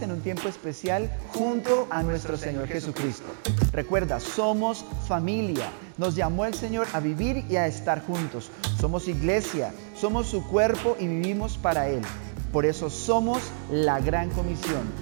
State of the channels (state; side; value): silent; left; digital silence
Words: en un tiempo especial junto a nuestro Señor Jesucristo. Recuerda, somos familia. Nos llamó el Señor a vivir y a estar juntos. Somos iglesia, somos su cuerpo y vivimos para Él. Por eso somos la gran comisión.